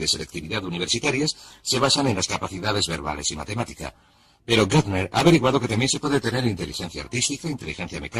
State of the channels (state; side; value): identical; both; correlation 1.00